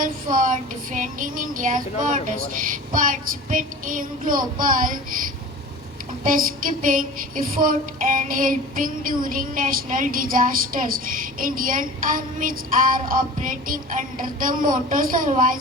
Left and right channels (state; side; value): normal; both; correlation 0.38